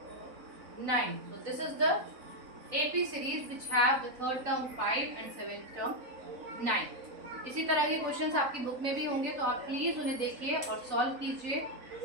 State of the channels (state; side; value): late; left; 3.9 ms